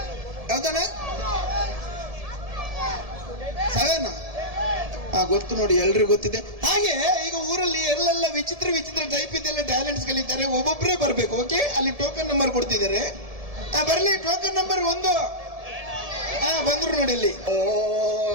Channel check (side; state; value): left; late; 1.7 ms